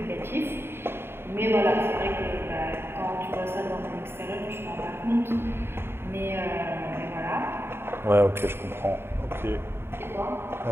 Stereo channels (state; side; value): late; left; 0.11 ms